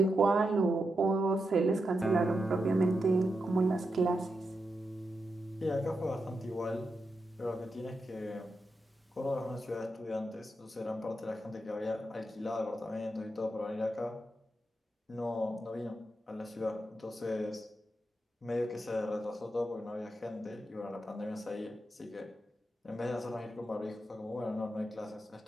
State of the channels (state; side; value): normal; both; correlation 0.86